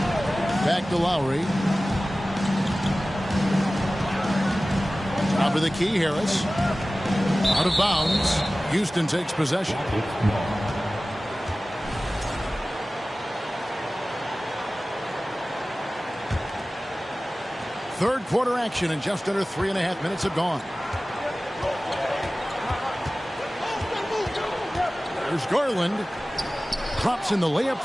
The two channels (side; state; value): both; normal; correlation 0.97